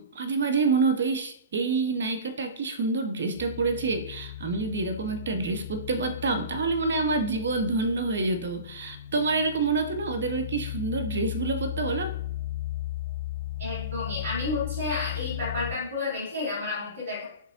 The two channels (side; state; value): both; inverted; correlation -0.35